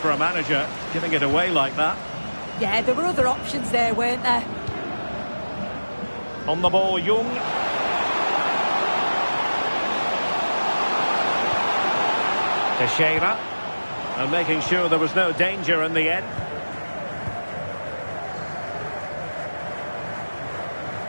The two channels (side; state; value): both; inverted; correlation -1.00